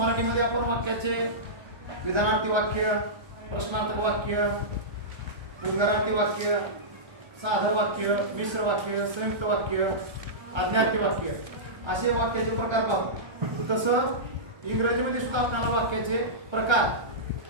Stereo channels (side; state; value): left; late; 1.3 ms